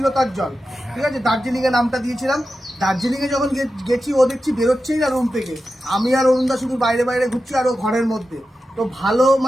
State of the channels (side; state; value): both; normal; correlation 0.91